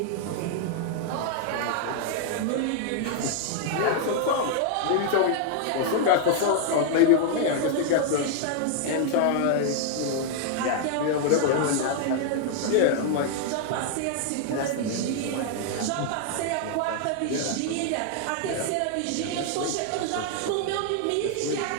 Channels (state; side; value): different; both; correlation 0.00